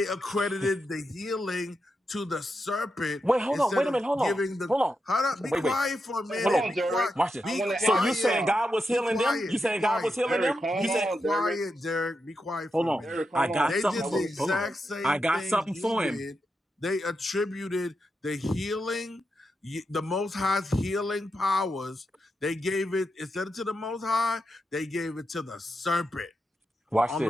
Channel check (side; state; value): both; normal; correlation 0.86